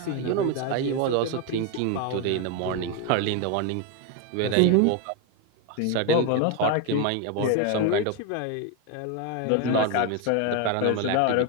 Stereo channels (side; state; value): both; different; correlation 0.02